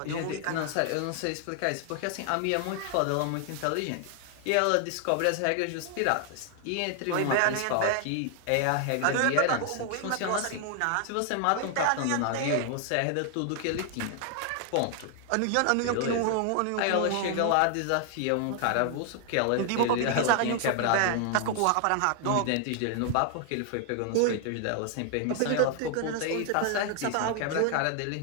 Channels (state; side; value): different; both; correlation 0.00